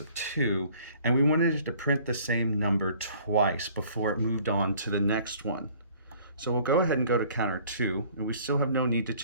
of 2, and we wanted it to print the same number twice before it moved on to the next one. So we'll go ahead and go to counter 2, and we still have no need to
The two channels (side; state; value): both; inverted; correlation -0.54